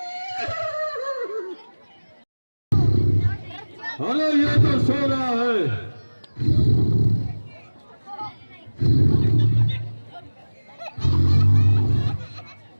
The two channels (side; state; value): both; inverted; correlation -1.00